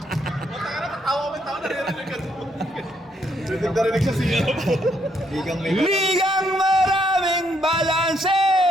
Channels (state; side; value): normal; both; correlation 0.73